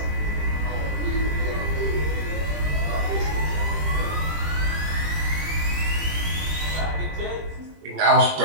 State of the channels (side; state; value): left; late; 20 ms